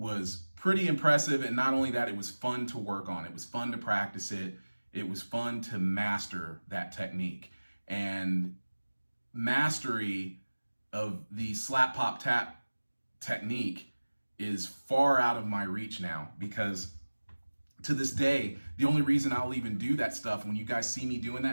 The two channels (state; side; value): inverted; both; correlation -1.00